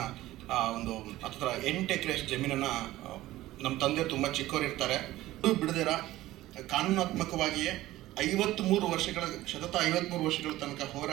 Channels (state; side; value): quieter; left; 16.1 dB